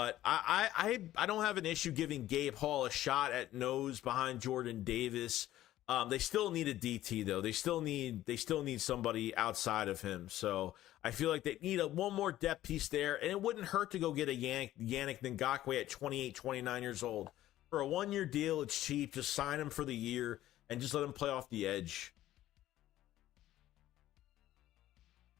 I don't have an issue giving Gabe Hall a shot at nose behind Jordan Davis. They still need a DT though. They still need somebody outside of him. So I feel like they need one more depth piece there, and it wouldn't hurt to go get a Yannick Ngakoue at 28, 29 years old. For a 1-year deal, it's cheap. Just sign him for the year and just let him play off the edge.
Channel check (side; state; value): right; quieter; 14.1 dB